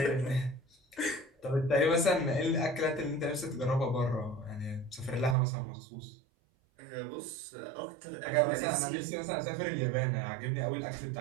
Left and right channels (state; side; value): drops out; left; at 5.4 s